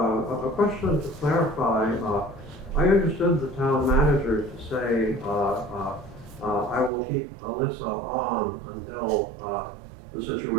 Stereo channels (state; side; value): drops out; left; at 6.9 s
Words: question to clarify. I understood the town manager to say, I will keep Alyssa on until the